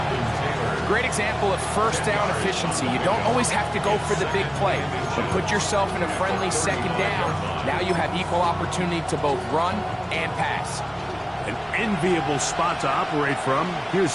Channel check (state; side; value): identical; both; correlation 1.00